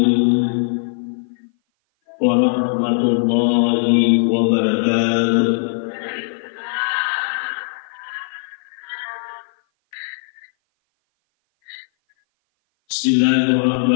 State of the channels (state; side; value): silent; right; 57 dB below the other